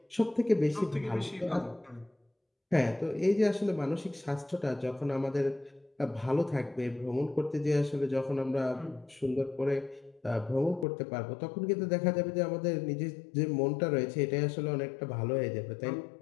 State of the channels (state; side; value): drops out; right; at 10.9 s